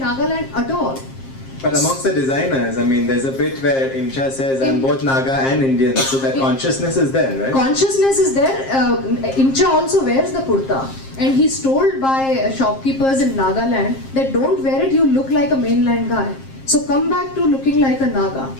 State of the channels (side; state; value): right; late; 7.5 ms